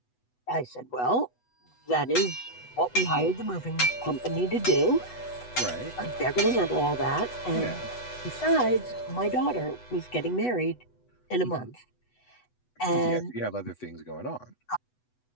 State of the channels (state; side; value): late; right; 8.1 ms